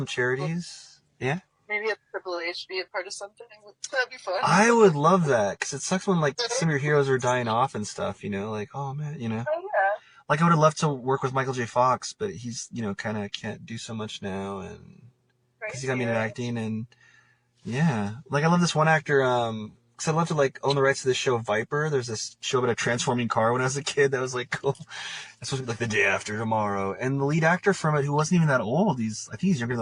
charities. Yeah. Maybe a Triple H be a part of something. That'd be fun. I would love that because it sucks when like some of your heroes are dying off and stuff. You know, like oh man, you know. Oh yeah. Like I would have loved to work with Michael J. Fox, but he's kind of can't do so much now, and because he got me into acting, and yeah, like I love this one actor. Because I'd love to like own the rights to this show Viper. There's this show about a transforming car when I was a kid that was like cool. It's supposed to be like The Day After Tomorrow, and the lead actor from it, who wasn't even that old, I think he's younger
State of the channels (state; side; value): identical; both; correlation 1.00